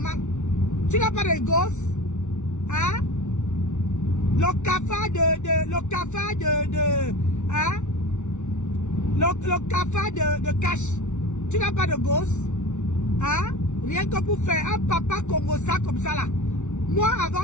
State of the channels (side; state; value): right; late; 0.84 ms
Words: Tu n'as pas de gosse? Hein? Le cafard de cash. Tu n'as pas de gosse? Hein? Rien que pour faire un papa congossa comme ça là. Moi,